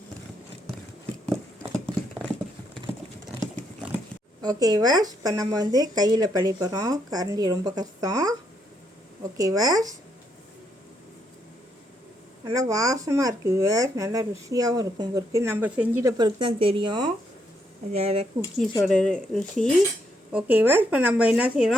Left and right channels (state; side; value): normal; both; correlation 0.76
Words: ஓகேவா, இப்போ நம்ம கையில் பழி போகிறோம். கரண்டி ரொம்ப கஷ்டம். ஓகேவா, நல்லா வாசமாக இருக்குது. நல்லா ருசியாகவும் இருக்கும். இருக்குது நம்ம செஞ்சிட்ட பிறகு தான் தெரியும் அந்த குக்கீஸோட ருசி. ஓகேவா, இப்போ நம்ம என்ன